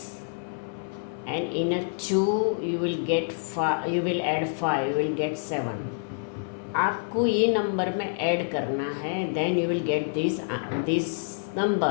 And in a 2 you will get 5, you will add 5, you will get 7. आपको ये number में add करना है, then you will get this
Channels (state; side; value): silent; right; 56 dB below the other